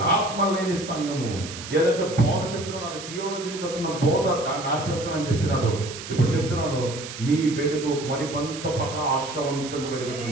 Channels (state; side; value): noise; right; hiss, 11 dB below the sound